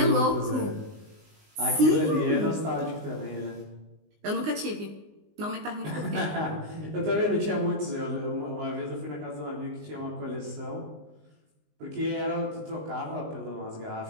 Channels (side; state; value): left; late; 19 ms